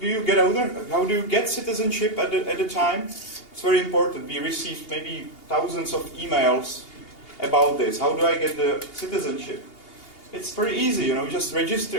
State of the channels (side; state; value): right; late; 2.8 ms